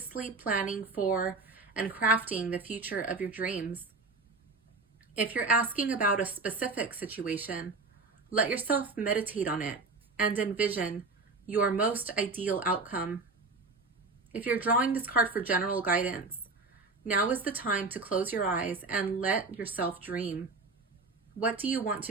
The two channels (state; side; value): quieter; left; 3.8 dB